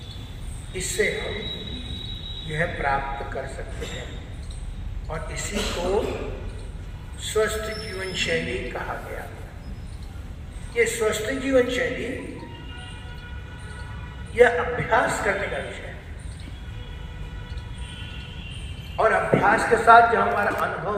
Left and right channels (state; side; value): identical; both; correlation 1.00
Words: इससे हम यह प्राप्त कर सकते हैं। और इसी को स्वस्थ जीवन शैली कहा गया। ये स्वस्थ जीवन शैली यह अभ्यास करने का विषय है, और अभ्यास के साथ जब हमारा अनुभव